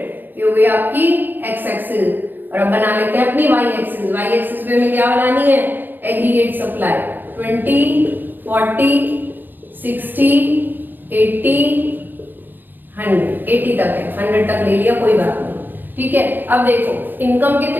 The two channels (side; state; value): left; late; 0.091 ms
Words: ये हो गई आपकी एक्स एक्सिस। और अब बना लेते हैं अपनी वाई एक्सिस। वाई एक्सिस पे हमें क्या बनानी है? एग्रीगेट सप्लाई 20, 40, 60, 80, 100, 80 तक है, 100 तक ले लिया, कोई बात नहीं। ठीक है, अब देखो इनकम